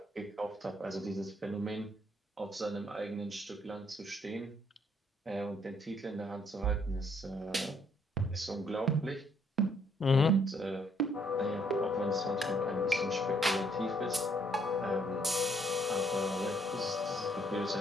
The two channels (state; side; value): normal; both; correlation 0.69